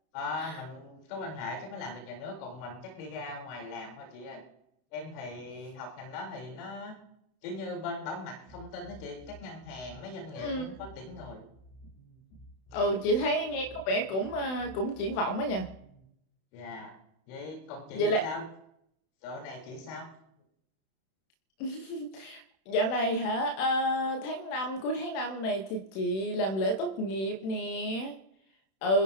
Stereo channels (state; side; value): late; right; 31 ms